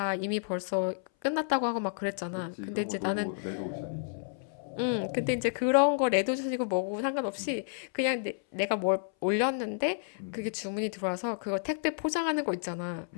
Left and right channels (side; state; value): right; silent; 57 dB below the other